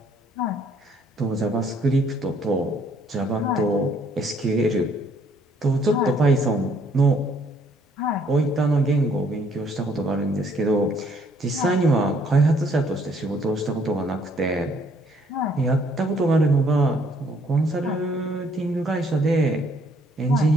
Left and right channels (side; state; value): both; normal; correlation 0.65